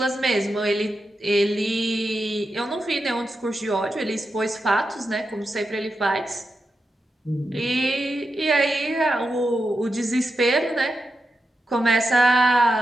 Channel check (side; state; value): both; normal; correlation 0.88